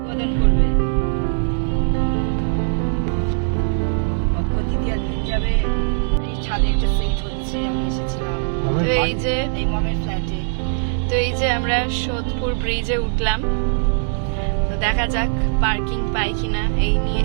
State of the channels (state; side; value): silent; left; digital silence